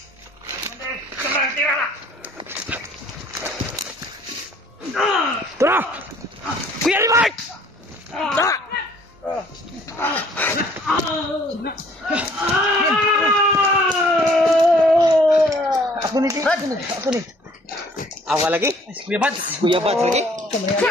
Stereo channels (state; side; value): normal; both; correlation 0.57